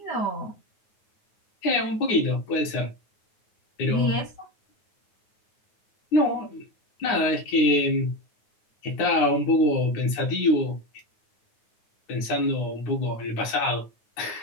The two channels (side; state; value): right; late; 9.6 ms